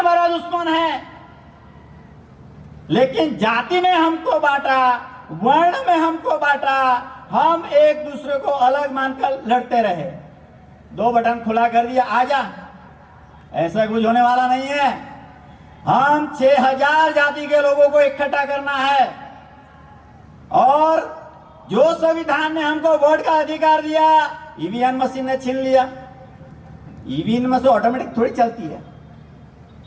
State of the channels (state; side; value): identical; both; correlation 1.00